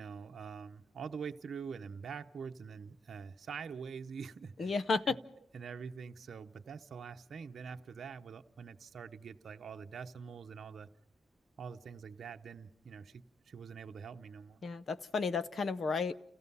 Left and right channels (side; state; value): both; normal; correlation 0.75